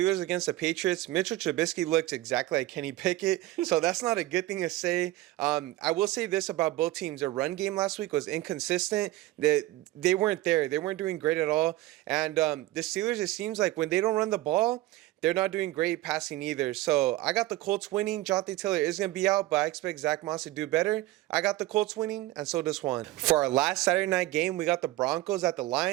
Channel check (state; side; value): quieter; left; 17.1 dB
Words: against the Patriots, Mitchell Trubisky looks exactly like Kenny Pickett, so that's not a good thing to say. I will say this about both teams. Their run game last week was inconsistent. They weren't there. They weren't doing great at all. And the Steelers, it seems like when they don't run the ball, they're not doing great passing either. So I got the Colts winning. Jonathan Taylor is going to be out, but I expect Zach Moss to do better. I got the Colts winning, and so does Juan. For our last Saturday night game, we got the Broncos at the